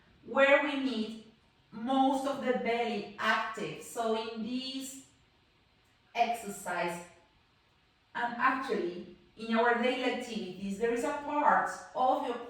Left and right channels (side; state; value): both; identical; correlation 1.00